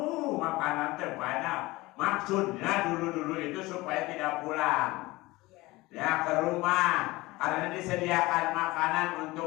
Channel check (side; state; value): right; quieter; 20.6 dB